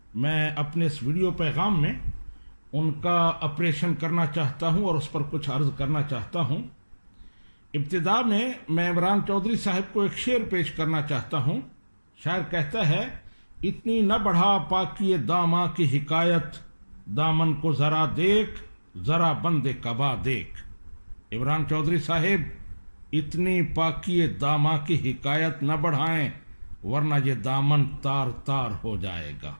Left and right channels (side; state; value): both; inverted; correlation -1.00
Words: میں اپنے اس ویڈیو پیغام میں ان کا اپریشن کرنا چاہتا ہوں اور اس پر کچھ عرض کرنا چاہتا ہوں۔ ابتدا میں عمران چودھری صاحب کو ایک شعر پیش کرنا چاہتا ہوں۔ شاعر کہتا ہے، اتنی نہ بڑھا پاکی داماں کی حکایت، دامن کو ذرا دیکھ، ذرا بند قبا دیکھ۔ عمران چودھری صاحب، اتنی پاکی داماں کی حکایت نہ بڑھائیں ورنہ یہ دامن تار تار ہو جائے گا۔